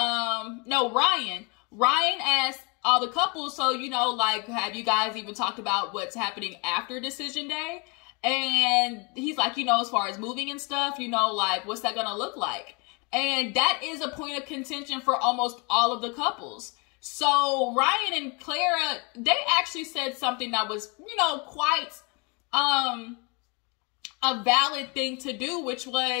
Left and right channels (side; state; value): right; quieter; 31.3 dB